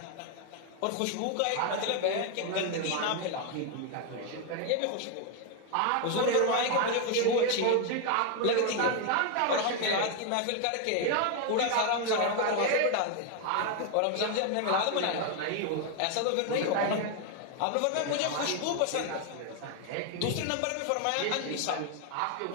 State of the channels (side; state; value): both; different; correlation 0.01